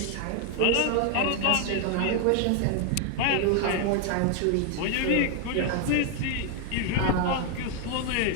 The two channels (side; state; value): both; different; correlation 0.00